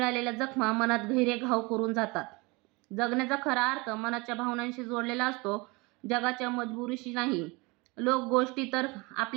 जखमा मनात गहिरे घाव करून जातात. जगण्याचा खरा अर्थ मनाच्या भावनांशी जोडलेला असतो, जगाच्या मजबुरीशी नाही. लोक गोष्टी तर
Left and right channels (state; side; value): quieter; left; 26.1 dB